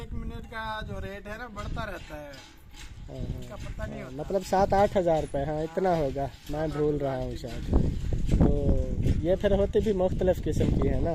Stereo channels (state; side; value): identical; both; correlation 1.00